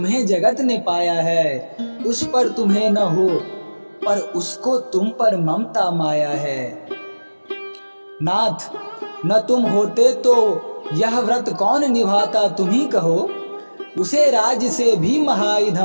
जगत ने पाया है। उस पर तुम्हें न हो, पर उसको तुम पर ममता माया है। नाथ, न तुम होते तो यह व्रत कौन निभाता, तुम ही कहो। उसे राज से भी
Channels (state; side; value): inverted; both; correlation -1.00